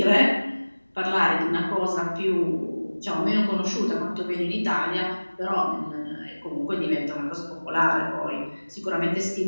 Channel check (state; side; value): inverted; both; correlation -1.00